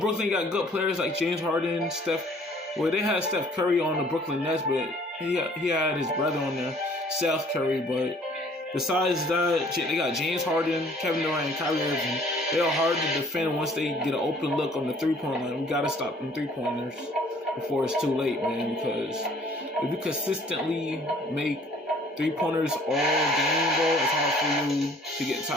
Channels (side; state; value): both; normal; correlation 0.56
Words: got good players like James Harden, Steph. Well, they had Steph Curry on the Brooklyn Nets, but he had his brother on there, Seth Curry. But besides that, they got James Harden, Kevin Durant, and Kyrie Irving. They are hard to defend once they get an open look on the three-point line. We got to stop them three-pointers before it's too late, man, because if you consistently make three-pointers all game, bro, it's hard for you to get